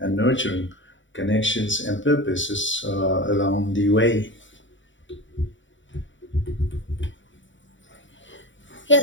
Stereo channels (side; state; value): right; late; 0.55 ms